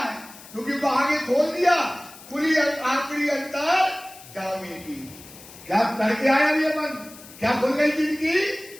क्योंकि वो आगे खोल दिया पूरी आखिरी अंतर जाने की। क्या करके आया ये मन, क्या खुल गई जिंदगी,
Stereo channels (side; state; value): left; noise; hiss, 19 dB below the sound